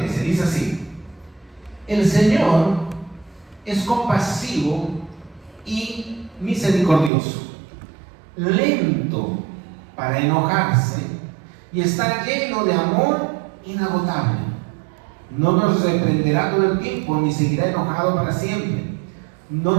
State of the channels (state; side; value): drops out; left; at 7.1 s